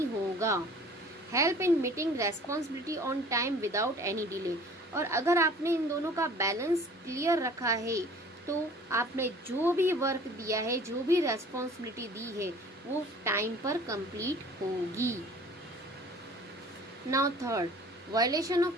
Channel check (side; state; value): both; normal; correlation 0.48